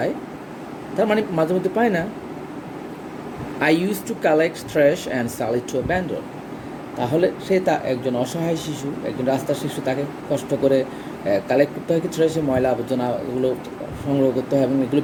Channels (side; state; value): both; identical; correlation 1.00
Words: তার মানে মাঝে মধ্যে পাই না। I use to collect trash and sell it to a vendor. তাহলে সে একজন অসহায় শিশু, একজন রাস্তার শিশু, তাকে কষ্ট করে কালেক্ট করতে হয় কি ট্র্যাশে, ময়লা আবর্জনা, এগুলো সংগ্রহ করতে হয় এবং এগুলো